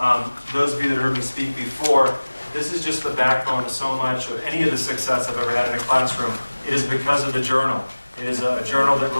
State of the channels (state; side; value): inverted; both; correlation -1.00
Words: those of you that heard me speak before, this is just the backbone of so much of any of the success I've ever had in a classroom. It is because of the journal. It is a journal that